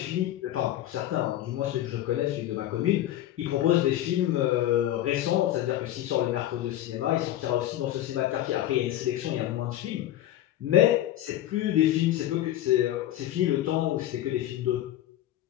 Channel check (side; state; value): right; quieter; 13.3 dB